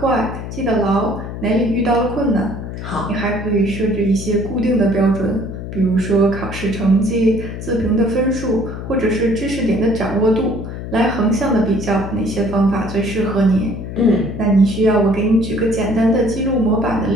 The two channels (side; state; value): left; noise; hum, 8 dB below the sound